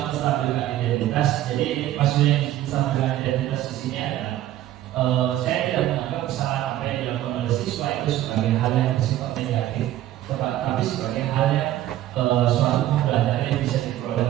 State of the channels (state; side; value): quieter; left; 13.6 dB